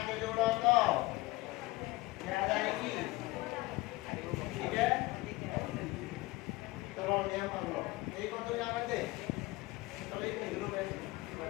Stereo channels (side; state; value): right; quieter; 20.4 dB